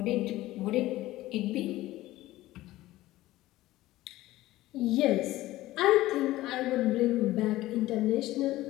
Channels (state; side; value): quieter; right; 16.6 dB